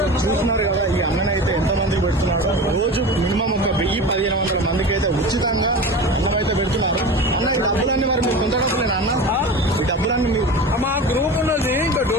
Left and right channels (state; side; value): normal; both; correlation 0.31